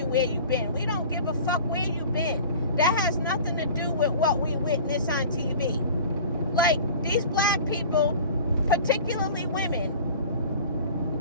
where you've been. We don't give a fuck where you've been. That has nothing to do with what we witness on TV. Like, these black people, particularly women,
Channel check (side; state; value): both; inverted; correlation -0.41